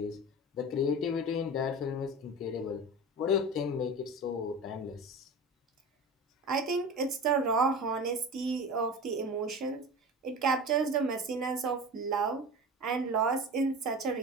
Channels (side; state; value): both; normal; correlation 0.31